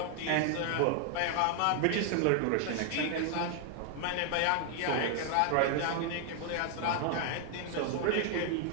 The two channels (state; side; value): different; both; correlation 0.00